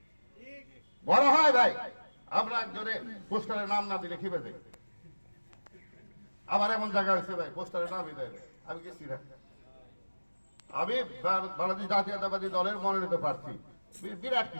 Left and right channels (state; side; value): inverted; both; correlation -1.00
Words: বড় হয় ভাই। আমরা একজনে পোস্টারের নাম না দিলে খেপে যাই। আমার এমন জায়গা হয়েছে ভাই, পোস্টারের নামই দেয় না, আমি গেছি না। আমি বাংলাদেশ জাতীয়তাবাদী দলের মনোনীত প্রার্থী, বিরাট